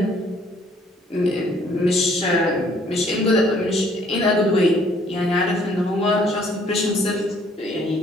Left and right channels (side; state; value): both; normal; correlation 0.62